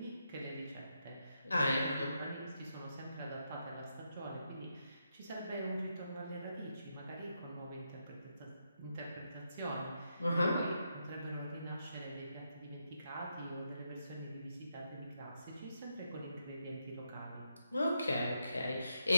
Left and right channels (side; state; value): both; inverted; correlation -0.82